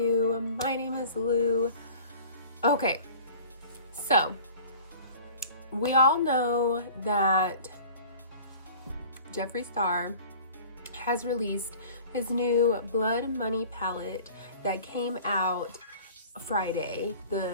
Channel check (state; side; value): inverted; both; correlation -0.45